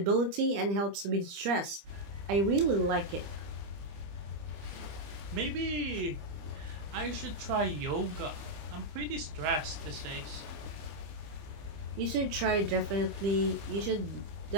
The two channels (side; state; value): left; late; 25 ms